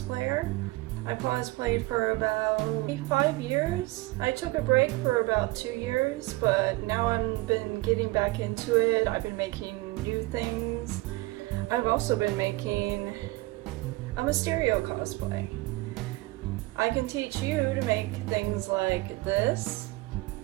I cosplayed for about 5 years. I took a break for about 2 years, but now I've been getting back into it. I've been making new things. I've also been making a Mysterio cosplay. I can teach you to make things like this.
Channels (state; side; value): quieter; left; 21.5 dB